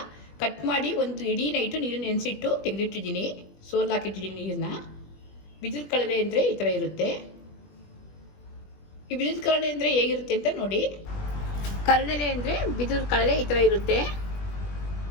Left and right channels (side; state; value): right; late; 20 ms